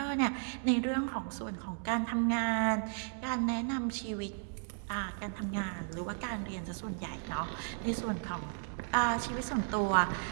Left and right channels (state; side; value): silent; left; 55 dB below the other